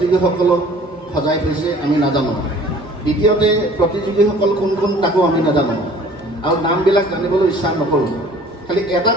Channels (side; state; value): both; normal; correlation 0.50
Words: সজাই থৈছে আমি নাজানো। দ্বিতীয়তে প্ৰতিযোগীসকল কোন কোন তাকো আমি নাজানো আৰু নামবিলাক জানিবলৈ ইচ্ছা নকৰোঁ। খালি এটা